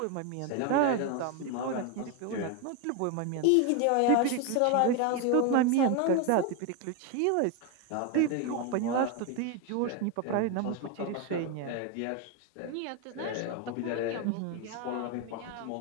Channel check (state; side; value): different; both; correlation 0.01